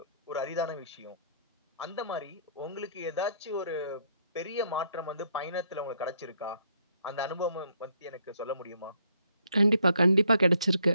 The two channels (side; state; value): both; inverted; correlation -0.69